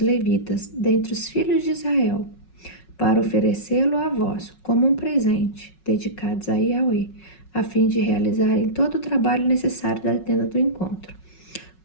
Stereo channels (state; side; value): late; right; 5.4 ms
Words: dentre os filhos de Israel, para oferecê-lo a vós como um presente, dedicados a Yahweh, a fim de realizarem todo o trabalho necessário da tenda do encontro.